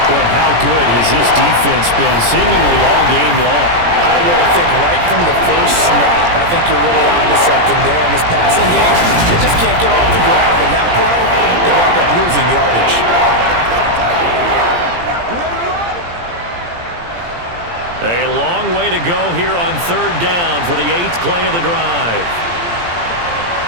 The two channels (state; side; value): late; left; 17 ms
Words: how good has this defense been seemingly all game long? I really think right from the first snap, I think you're really onto something there in this passing game. They just can't get off the ground. In that play, they wound up losing yardage. A long way to go here on 3rd down for the 8th play of the drive.